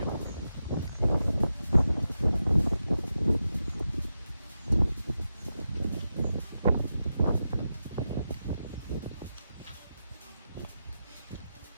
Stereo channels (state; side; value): inverted; both; correlation -0.90